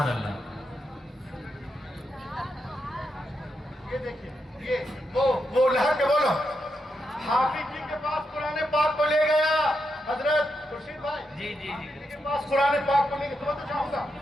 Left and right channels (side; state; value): both; normal; correlation 0.84